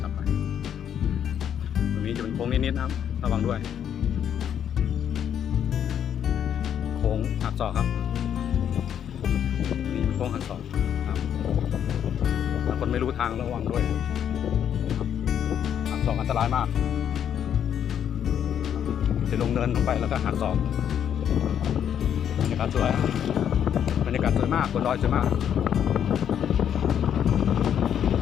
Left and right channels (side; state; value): right; quieter; 9.1 dB